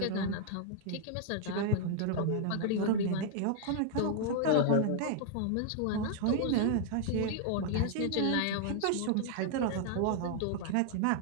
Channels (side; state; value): both; different; correlation 0.00